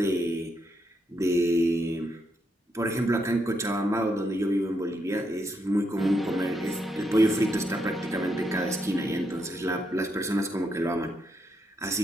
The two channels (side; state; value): both; normal; correlation 0.79